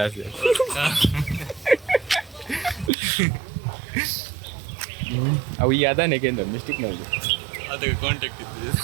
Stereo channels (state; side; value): drops out; left; at 2.9 s